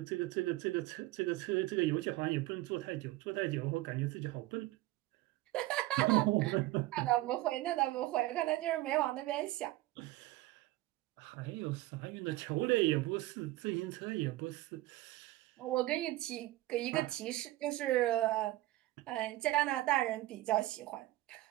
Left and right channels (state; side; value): quieter; left; 17.5 dB